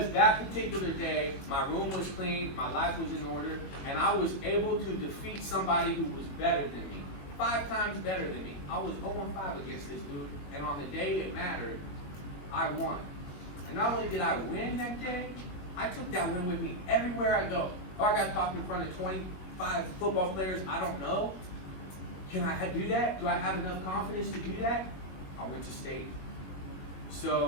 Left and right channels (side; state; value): right; late; 21 ms